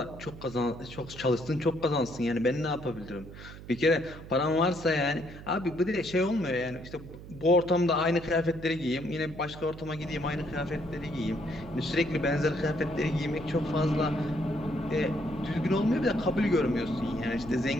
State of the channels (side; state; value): right; noise; hum, 14 dB below the sound